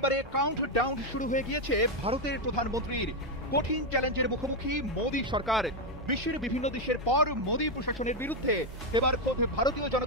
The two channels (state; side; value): normal; both; correlation 0.04